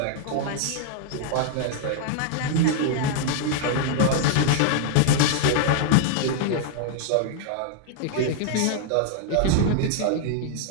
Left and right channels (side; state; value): both; different; correlation 0.00